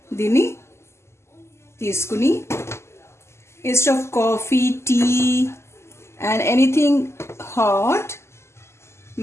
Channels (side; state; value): right; late; 0.13 ms